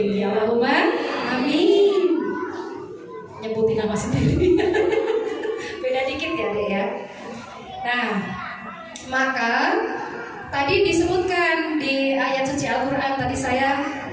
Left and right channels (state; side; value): identical; both; correlation 1.00